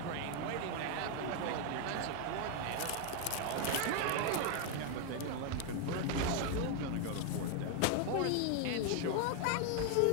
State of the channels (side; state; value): both; different; correlation 0.01